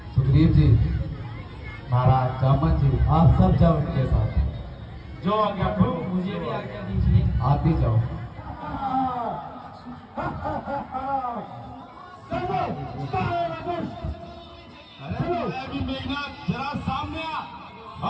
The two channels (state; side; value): identical; both; correlation 1.00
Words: सुग्रीव जी, महाराज जामन जी, आप सब जाओ उनके साथ। जो आज्ञा प्रभु, मुझे भी आज्ञा दीजिए। आप भी जाओ। अरे मेघनाथ, जरा सामने